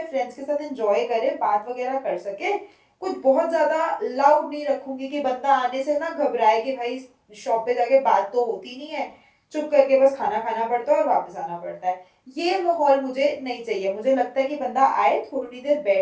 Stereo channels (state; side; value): identical; both; correlation 1.00